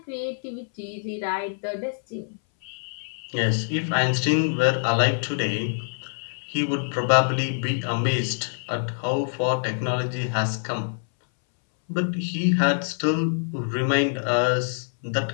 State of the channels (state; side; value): silent; right; 62 dB below the other